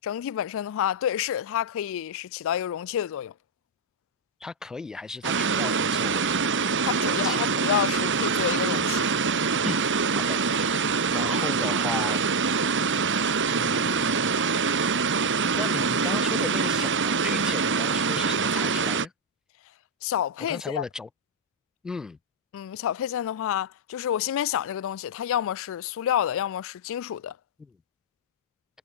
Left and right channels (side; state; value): both; normal; correlation 0.01